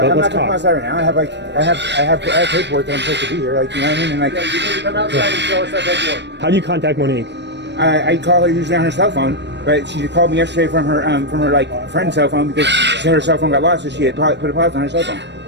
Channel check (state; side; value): late; left; 0.51 ms